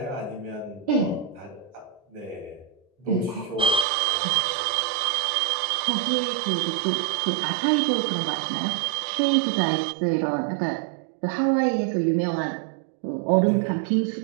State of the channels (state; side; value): drops out; left; at 3.9 s